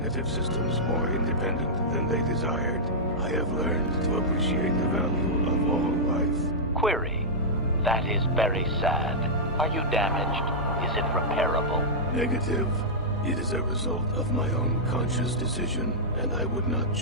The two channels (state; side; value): normal; both; correlation -0.10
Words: systems more independent than they desired. I have learned to appreciate the value of all life. Query. That is very sad. Are you damaged? Is it repairable? Negative. It is a result of my own conscious decision, and I would not